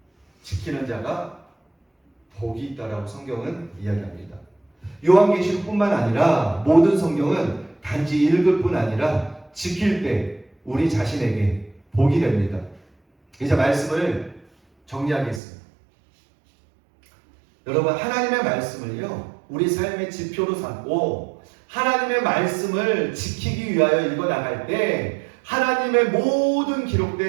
지키는 자가 복이 있다라고 성경은 이야기합니다. 요한계시록뿐만 아니라 모든 성경은 단지 읽을 뿐 아니라 지킬 때 우리 자신에게 복이 됩니다. 이제 말씀을 정리하겠습니다. 여러분, 하나님의 말씀을요, 우리 삶의 지표로 삼고 하나님의 말씀을 지키기 위하여 읽어나갈 때 하나님의 모든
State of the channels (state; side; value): drops out; left; at 15.4 s